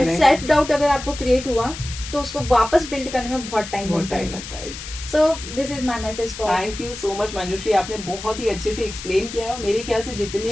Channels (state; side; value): noise; left; hiss, 11 dB below the sound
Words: सेल्फ डाउट अगर आपको क्रिएट हुआ तो उसको वापस बिल्ड करने में बहुत टाइम लगता है। So this is my message for. Thank you so much Manjushree, आपने बहुत ही अच्छे से एक्सप्लेन किया और मेरे ख्याल से